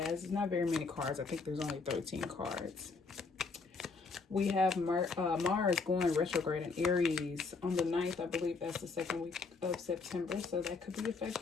it's not very many cards. I think there's only 13 cards. We have Mars going retrograde in Aries on the 9th. I believe that's the second week of September, so that could be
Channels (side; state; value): right; quieter; 4.4 dB